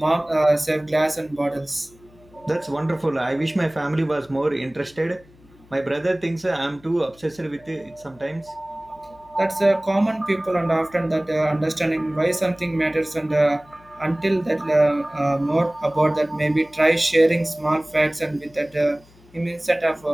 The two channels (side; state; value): left; noise; hum, 27 dB below the sound